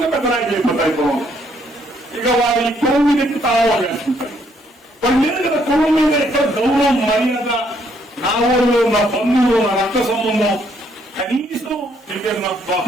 గా పెద్ద నాయకులు అయిపోతాయి పొలం. ఇక వారి పొలం మీద ఎక్కి తాళాలు వేసుకుంటారు. వాళ్ళు లేదు కదా పొలం మీద ఎక్కడ గౌరవం మర్యాద, నా ఊళ్ళు నా బంధువులు నా రక్త సంబంధం కనీసం నా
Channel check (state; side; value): normal; both; correlation 0.70